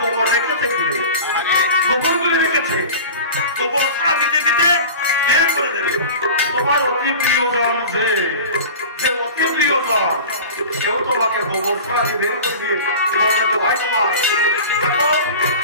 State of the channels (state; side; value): inverted; both; correlation -0.35